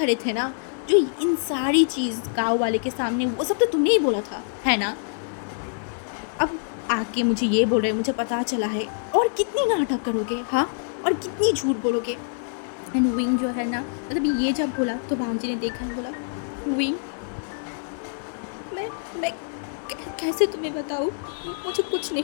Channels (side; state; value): right; silent; digital silence